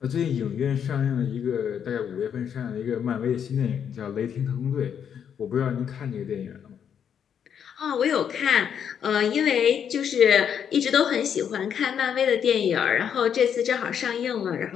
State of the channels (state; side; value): quieter; right; 8.2 dB